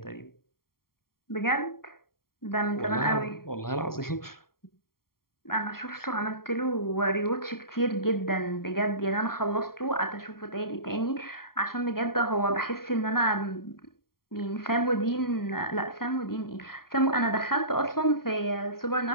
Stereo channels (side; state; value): right; late; 0.93 ms